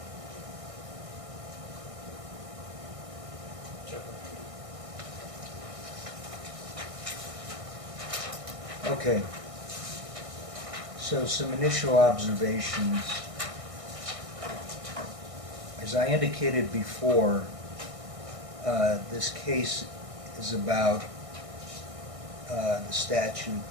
Okay. So some initial observations. As I indicated before, this case is about the statute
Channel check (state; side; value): late; left; 1.6 ms